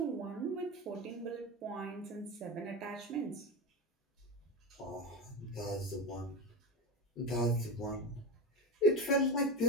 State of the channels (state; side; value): normal; both; correlation 0.21